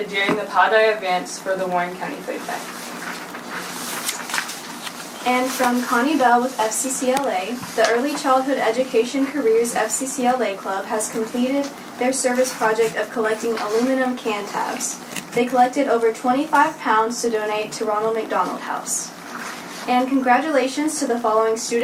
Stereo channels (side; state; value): both; identical; correlation 1.00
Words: during the Pi Day events for the Warren County Food Bank. And from Connie Bell with FCCLA, the Early Childhood Education Careers FCCLA Club has completed their service project of collecting aluminum can tabs. They collected over 25 pounds to donate to Ronald McDonald House. And congratulations to the following